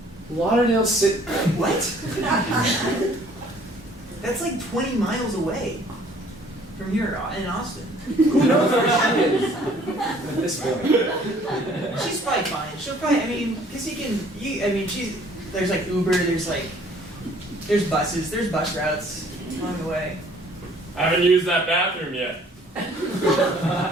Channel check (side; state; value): both; normal; correlation 0.57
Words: Lauderdale City. What? That's like 20 miles away from here in Austin. Who knows where she is with this feeling? She's probably fine. She'll probably, because there's like Uber, there's buses, there's bus routes along the way. I haven't used that bathroom yet.